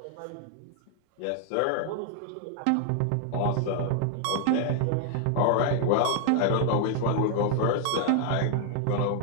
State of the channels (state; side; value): different; both; correlation 0.00